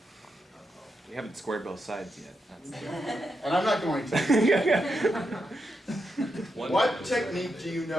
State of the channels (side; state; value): both; normal; correlation 0.85